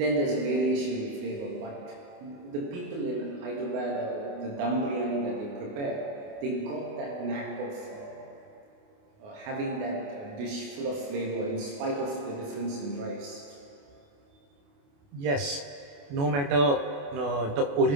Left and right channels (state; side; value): late; left; 28 ms